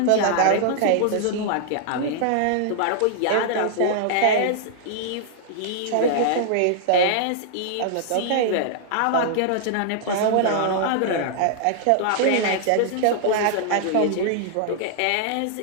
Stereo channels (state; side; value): different; both; correlation -0.01